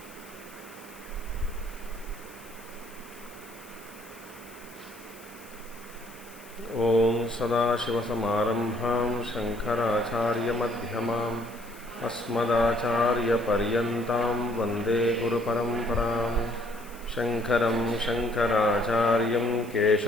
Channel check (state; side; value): noise; left; hiss, 21 dB below the sound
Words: ओम सदाशिवसमारम्भां शङ्कराचार्यमध्यमाम् अस्मदाचार्यपर्यन्तां वन्दे गुरुपरम्परां। शङ्करं शङ्कराचार्यं